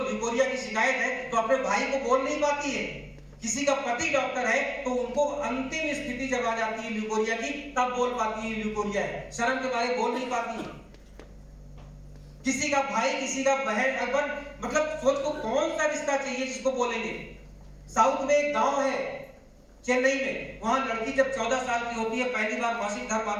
लिकोरिया की शिकायत है, तो अपने भाई को बोल नहीं पाती है किसी का पति डॉक्टर है तो उनको अंतिम स्थिति जब आ जाती है ल्यूकोरिया की, तब बोल पाती है ल्यूकोरिया है, शर्म के बारे बोल नहीं पाती है। किसी का भाई, किसी का बहन, अगर मतलब सोच को कौन सा रिश्ता चाहिए जिसको बोलेंगे। साउथ में एक गांव है चेन्नई में, वहां लड़की जब 14 साल की होती है, पहली बार मासिक धर्म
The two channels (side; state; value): both; identical; correlation 1.00